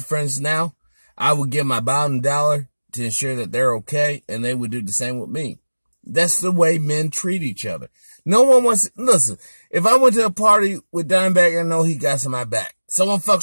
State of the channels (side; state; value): both; inverted; correlation -1.00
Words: friends now. I would give my bottom dollar to ensure that they're okay, and they would do the same with me. That's the way men treat each other. No one wants, listen, if I went to a party with Dimebag, I know he got some my back. Someone